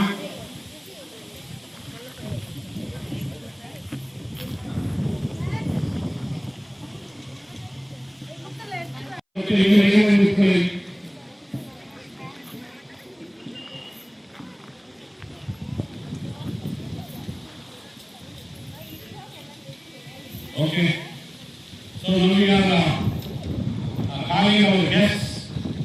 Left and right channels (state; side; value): identical; both; correlation 1.00